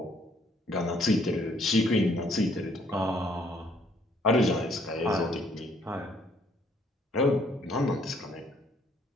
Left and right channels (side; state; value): both; normal; correlation 0.65